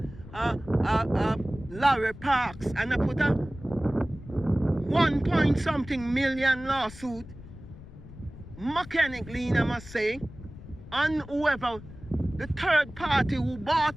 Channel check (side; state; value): left; noise; rumble, 16 dB below the sound